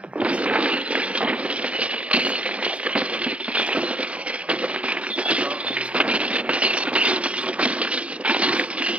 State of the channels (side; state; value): left; late; 0.063 ms